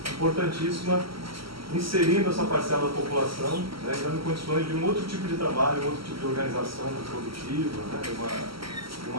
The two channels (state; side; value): late; left; 0.75 ms